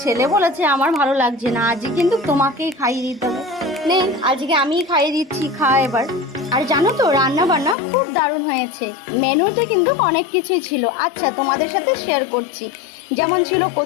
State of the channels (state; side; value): drops out; right; at 7.8 s